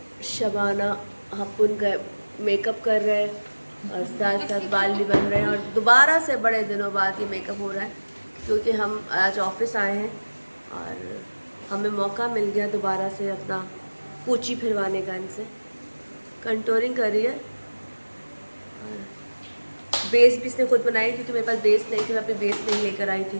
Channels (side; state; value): both; inverted; correlation -1.00